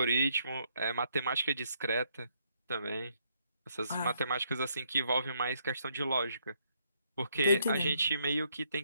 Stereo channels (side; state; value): both; inverted; correlation -0.73